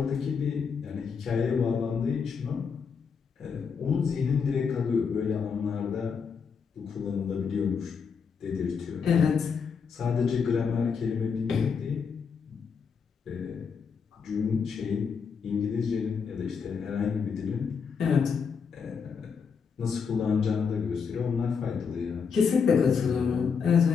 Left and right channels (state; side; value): quieter; right; 6.1 dB